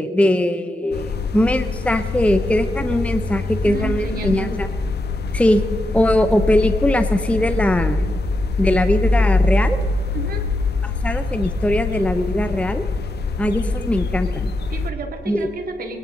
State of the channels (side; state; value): both; normal; correlation 0.86